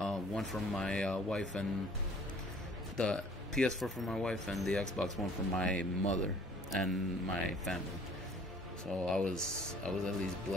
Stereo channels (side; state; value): both; normal; correlation 0.54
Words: from my wife, and the PS4 for my wife, and the Xbox One for my mother and my family. So I was at least